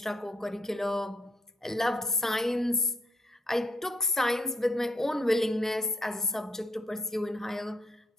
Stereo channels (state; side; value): normal; both; correlation 0.72